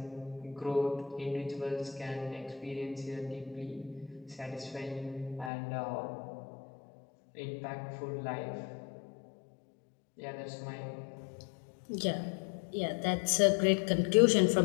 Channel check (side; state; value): right; drops out; at 5.5 s